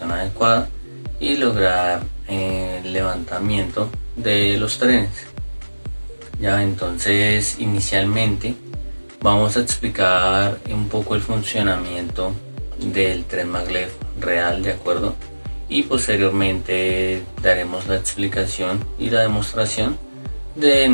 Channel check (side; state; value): both; inverted; correlation -1.00